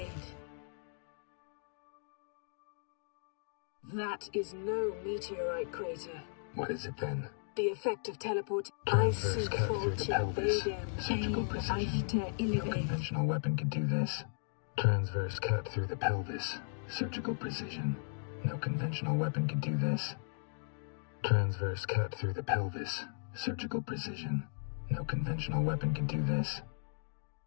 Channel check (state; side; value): silent; right; digital silence